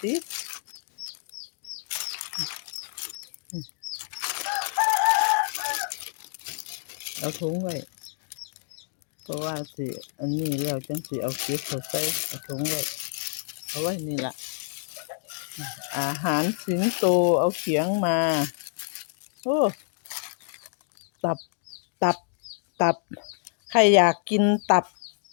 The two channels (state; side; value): silent; right; digital silence